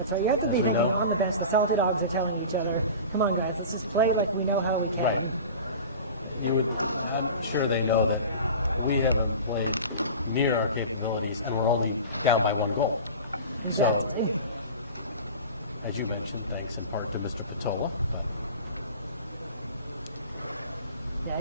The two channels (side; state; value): both; inverted; correlation -0.36